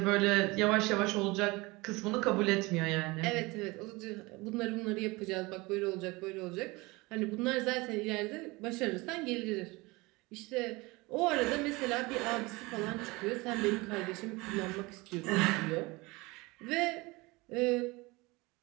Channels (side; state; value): left; quieter; 23.6 dB